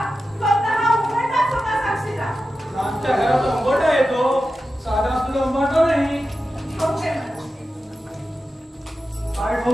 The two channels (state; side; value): normal; both; correlation 0.92